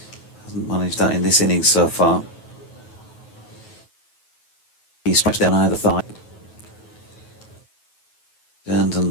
Hasn't managed that in this innings so far. He strikes down either thigh. Turns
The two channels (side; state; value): right; late; 9.2 ms